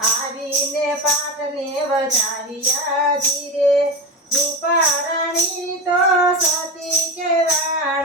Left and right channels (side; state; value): both; normal; correlation 0.21